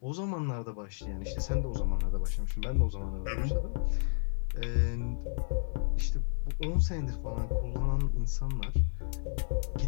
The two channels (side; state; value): right; silent; digital silence